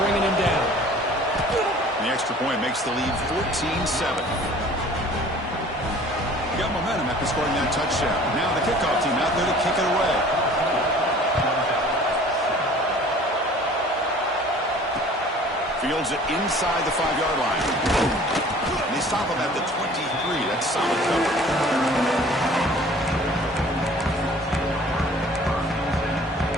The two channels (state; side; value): normal; both; correlation 0.49